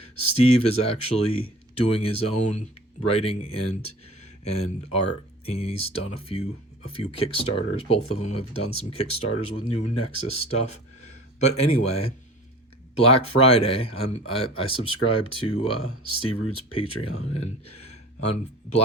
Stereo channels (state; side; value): normal; both; correlation 0.42